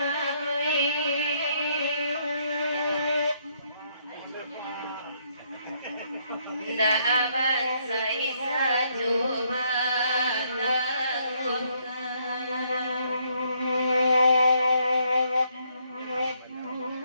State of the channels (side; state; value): both; inverted; correlation -0.72